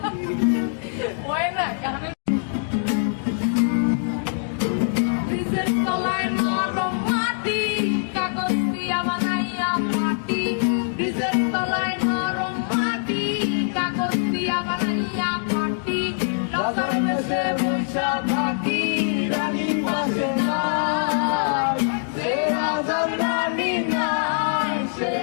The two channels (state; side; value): silent; right; digital silence